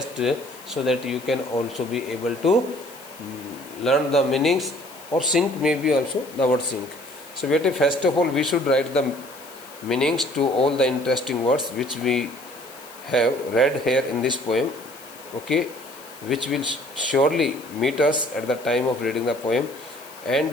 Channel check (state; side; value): noise; left; hiss, 20 dB below the sound